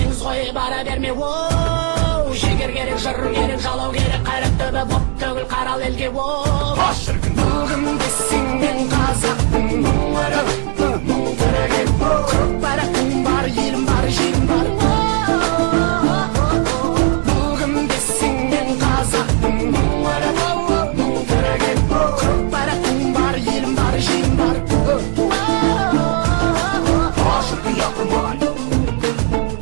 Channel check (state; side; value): quieter; left; 36.2 dB